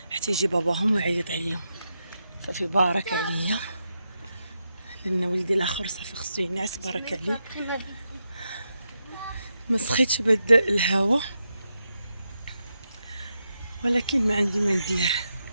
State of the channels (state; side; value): inverted; both; correlation -0.86